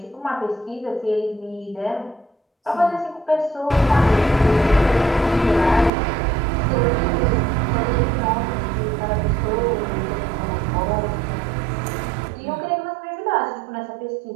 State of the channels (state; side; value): drops out; left; at 5.9 s